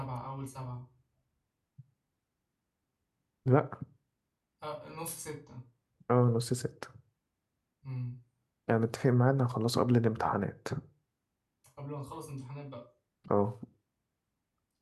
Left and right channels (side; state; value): both; identical; correlation 1.00